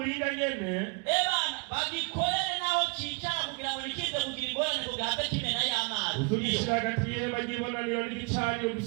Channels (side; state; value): left; quieter; 33.0 dB